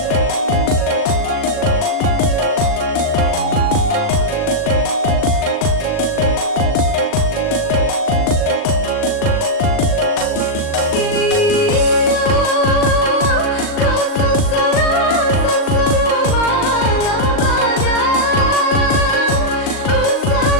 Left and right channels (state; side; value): late; right; 39 ms